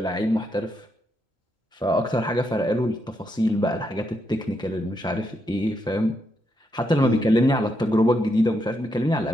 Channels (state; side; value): normal; both; correlation 0.80